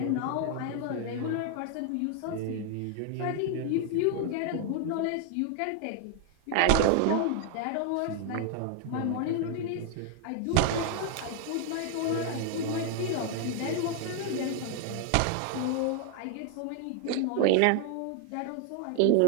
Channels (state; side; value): different; both; correlation 0.00